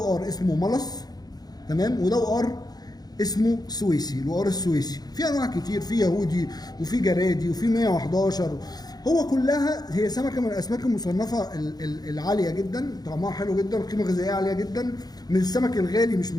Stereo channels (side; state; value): right; late; 0.19 ms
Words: اسمه ملص، تمام، وده وقار اسمه سويسي، الوقار السويسي. في انواع كتير، في يهودي وفي جرادي وفي 111. هو كلها هي سمكه من الاسماك المصنفه العاليه جدا، طعمها حلو جدا، قيمه غذائيه عاليه جدا، من السمك الغالي مش من